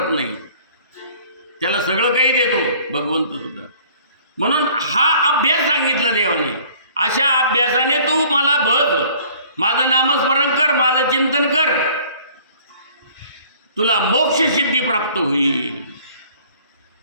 नाही. त्याला सगळं काही देतो भगवंत सुद्धा. म्हणून हा अभ्यास सांगितला देवाने. अशा अभ्यासाने तू मला बघ, माझं नामस्मरण कर, माझं चिंतन कर, तुला मोक्ष सिद्धी प्राप्त होईल.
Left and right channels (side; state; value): both; inverted; correlation -0.53